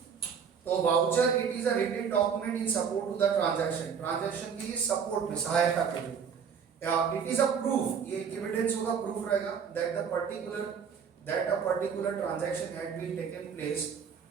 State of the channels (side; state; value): left; quieter; 6.9 dB